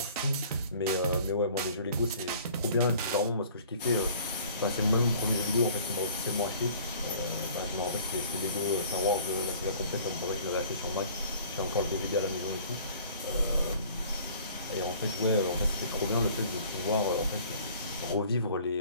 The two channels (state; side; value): inverted; both; correlation -0.51